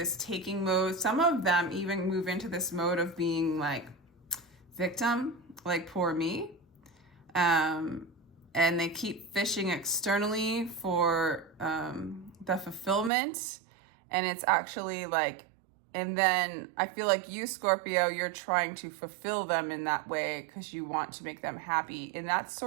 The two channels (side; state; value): left; drops out; at 13.1 s